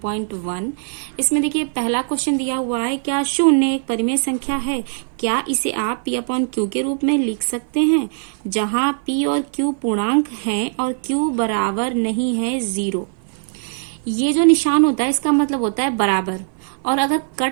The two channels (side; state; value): left; silent; 57 dB below the other